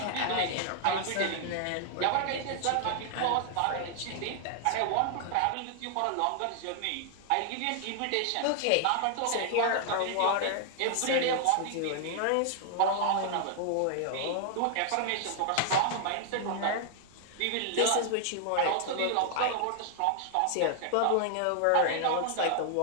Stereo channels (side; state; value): both; different; correlation 0.00